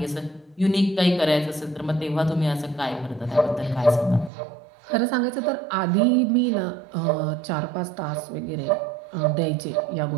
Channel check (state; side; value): drops out; left; at 4.3 s